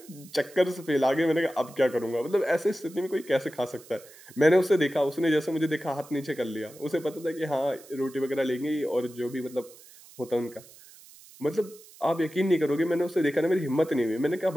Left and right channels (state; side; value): noise; right; hiss, 22 dB below the sound